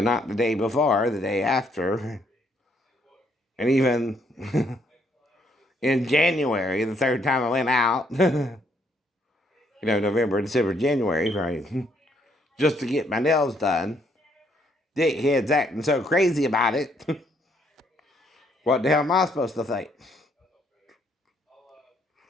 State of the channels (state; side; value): normal; both; correlation 0.70